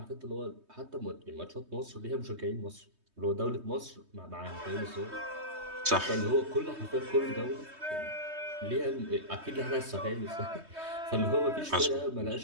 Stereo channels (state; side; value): late; left; 3.2 ms